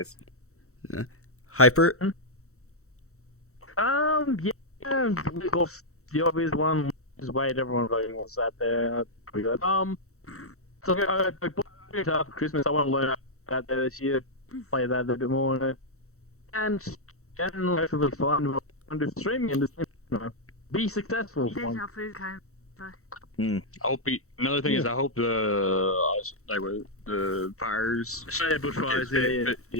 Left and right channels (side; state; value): right; late; 0.64 ms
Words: Hyper. Yeah. The obvious one is wait. Everyone voting what's that there. Pretty good. So I bought guitar for Christmas. I want to learn out there this year. Play that a little bit more, and hopefully find under streaming and just, be successful. I hope another thing is I hope the fires. Yeah, bushfires.